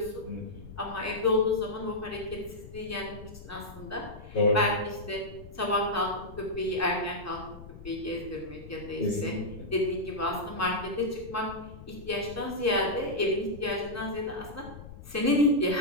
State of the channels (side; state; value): left; noise; rumble, 15 dB below the sound